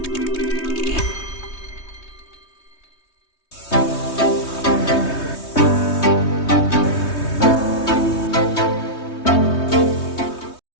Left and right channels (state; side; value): late; right; 3.2 ms